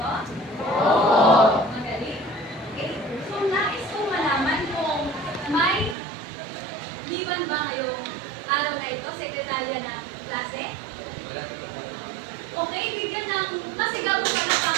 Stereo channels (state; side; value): drops out; left; at 6.0 s